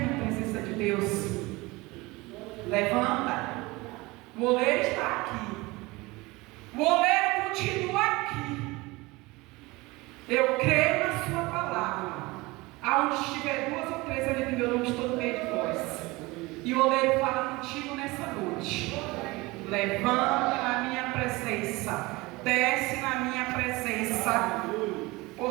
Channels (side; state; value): left; quieter; 22.4 dB